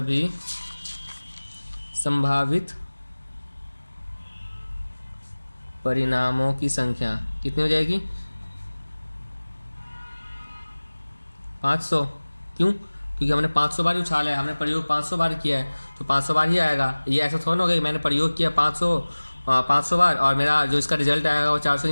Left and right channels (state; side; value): inverted; both; correlation -1.00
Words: संभावित परिणामों की संख्या कितनी हो जाएगी 500। क्यों, क्योंकि हमने 500 बार ही उछाला है, हमने प्रयोग 500 बार किया है तो 500 बार ही आएगा। ये ऐसा थोड़ा ना होगा कि मैंने प्रयोग किया 500 बार और मेरा जो इसका रिजल्ट आएगा वो